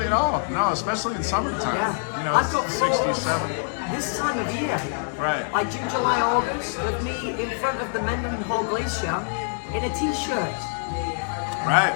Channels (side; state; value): right; silent; 62 dB below the other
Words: at all. No, especially in summertime. Yeah. You know, I've got it's 67. This time of year, Right. like June, July, August, with me in front of the Mendenhall Glacier in a t-shirt. Right.